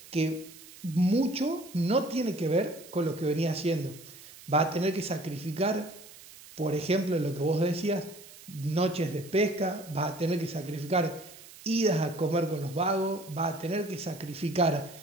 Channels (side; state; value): right; noise; hiss, 19 dB below the sound